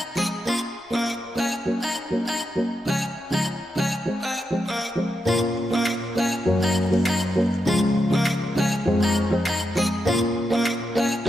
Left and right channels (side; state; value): both; normal; correlation 0.85